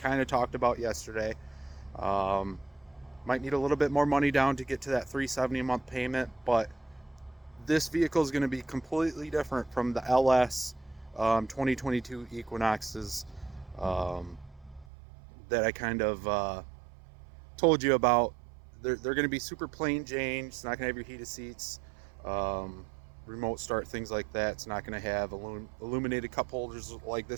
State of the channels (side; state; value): left; drops out; at 14.9 s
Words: of talked about yesterday. Might need a little bit more money down to get to that $370 a month payment, but this vehicle is going to be completely different from the LS 2022 Equinoxes that I kind of told you about. They're going to be super plain Jane. It's not going to have your heated seats, remote start, things like that. It's not going to have illuminated cup holders like